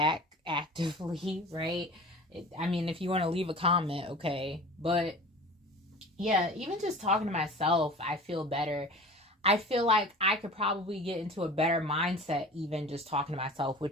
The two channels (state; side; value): normal; both; correlation 0.39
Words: actively, right? I mean, if you want to leave a comment, okay. But yeah, even just talking to myself, I feel better. I feel like I could probably get into a better mindset even just talking to myself,